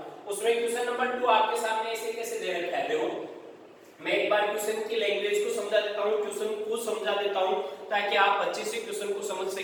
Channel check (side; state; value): both; identical; correlation 1.00